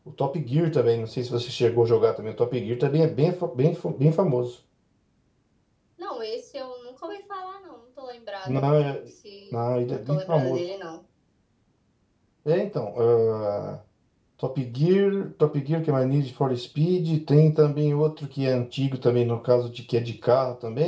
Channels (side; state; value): both; identical; correlation 1.00